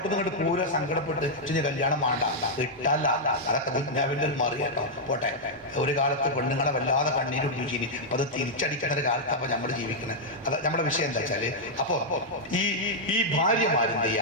നിന്ന് ഇങ്ങോട്ട് പൂര സങ്കടപ്പെട്ട് കല്യാണം വേണ്ട ഇട്ടല്ല. അതൊക്കെ ദുന്യാവിന്റെ ഒരു മറി കേട്ടോ. പോട്ടെ, ഒരു കാലത്ത് പെണ്ണുങ്ങളെ വല്ലാതെ കണ്ണീരൊടിപ്പിച്ചിനി. അപ്പൊ അത് തിരിച്ചടിക്കുന്ന ഒരു കാലത്ത് അപ്പൊ നമ്മൾ ജീവിക്കുന്നത്. അത് നമ്മുടെ വിഷയം എന്താ വെച്ചാല്, അപ്പൊ ഈ ഭാര്യമാരെന്ത്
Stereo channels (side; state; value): both; normal; correlation -0.05